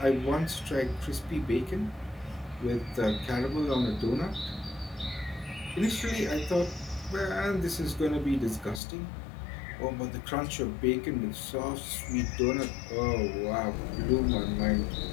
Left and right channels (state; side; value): drops out; right; at 8.8 s